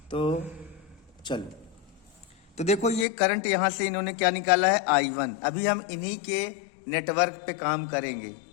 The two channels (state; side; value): drops out; right; at 3.1 s